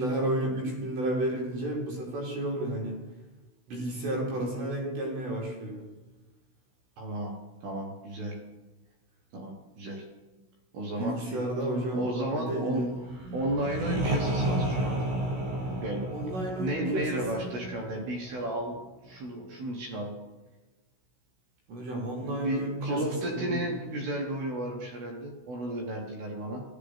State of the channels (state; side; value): late; left; 16 ms